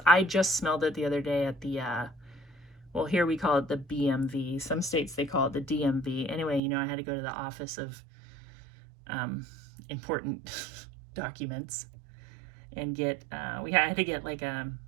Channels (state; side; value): drops out; left; at 6.6 s